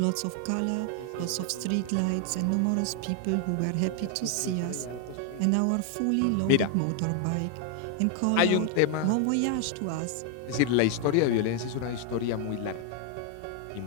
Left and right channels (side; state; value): both; different; correlation 0.00